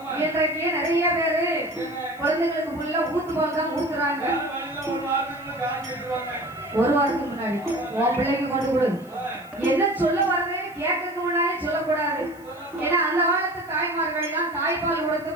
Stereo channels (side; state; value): left; noise; hiss, 27 dB below the sound